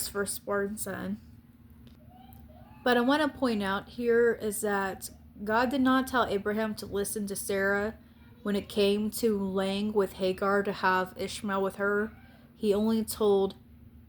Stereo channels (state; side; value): identical; both; correlation 1.00